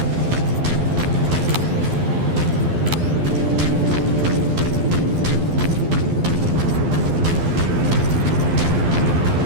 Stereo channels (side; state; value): left; late; 12 ms